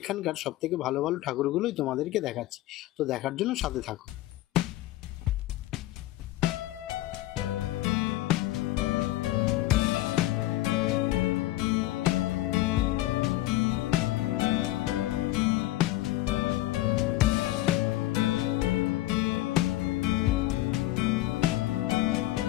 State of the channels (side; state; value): right; quieter; 16.5 dB